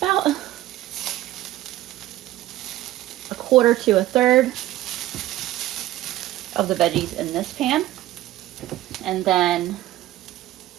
1/4 to 1/3 of the veggies in this pan. And then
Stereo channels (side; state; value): left; quieter; 14.8 dB